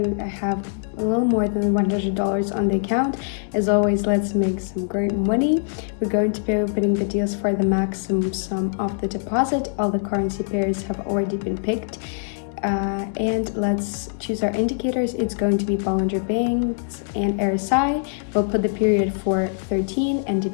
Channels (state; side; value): silent; right; digital silence